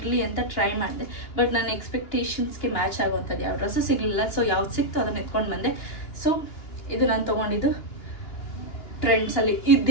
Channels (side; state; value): right; late; 2.9 ms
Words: ಅಂತ ಟ್ರೈ ಮಾಡಿದೆ, ಬಟ್ ನನ್ನ ಎಕ್ಸ್ಪೆಕ್ಟೇಷನ್ಸ್ಗೆ ಮ್ಯಾಚ್ ಆಗುವಂಥದ್ದು ಯಾವ ಡ್ರೆಸ್ಸು ಸಿಗಲಿಲ್ಲ. ಸೊ ಯಾವ್ದು ಸಿಕ್ತು ಅದನ್ನು ಎತ್ಕೊಂಡು ಬಂದೆ. ಸೊ ಇದು ನಾನು ತೊಗೊಂಡಿದ್ದು ಟ್ರೆಂಡ್ಸಲ್ಲಿ.